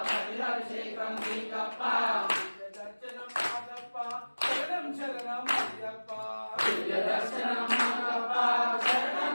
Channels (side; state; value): both; inverted; correlation -1.00